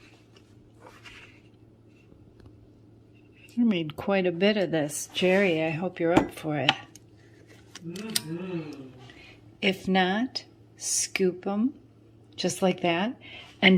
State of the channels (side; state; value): both; identical; correlation 1.00